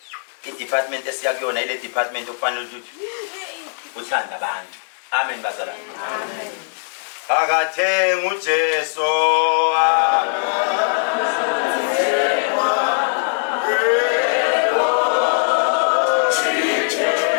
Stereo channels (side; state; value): right; silent; digital silence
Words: i-department esiya kuyona ile department okufanele ukuthi uthanda abantu amen bazalwane amen akathenga uJesu